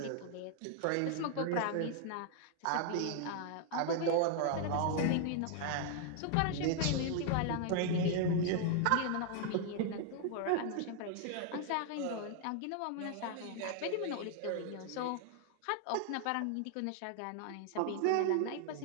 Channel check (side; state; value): both; different; correlation 0.00